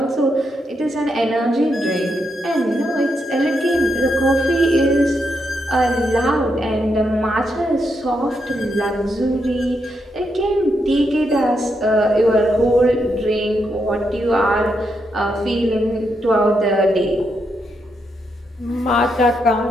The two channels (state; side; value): normal; both; correlation 0.81